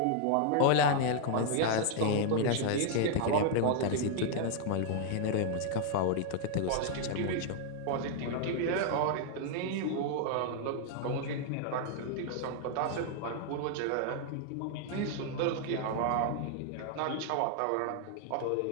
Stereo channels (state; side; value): different; both; correlation 0.00